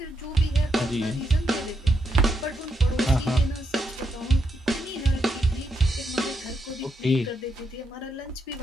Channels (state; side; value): normal; both; correlation 0.80